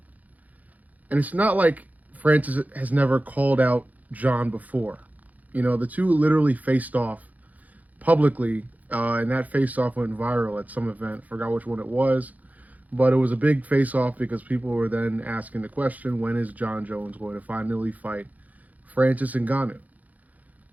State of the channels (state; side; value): late; left; 0.077 ms